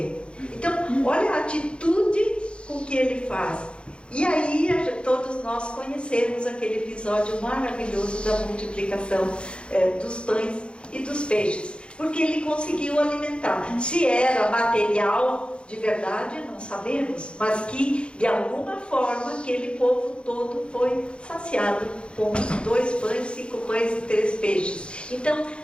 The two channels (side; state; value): right; late; 0.056 ms